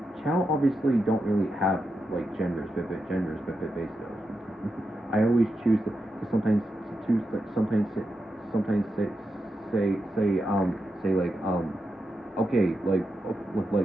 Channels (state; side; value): normal; both; correlation 0.87